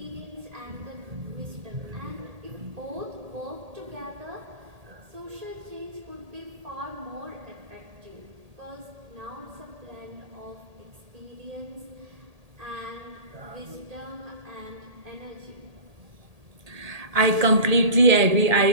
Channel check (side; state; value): left; late; 1.8 ms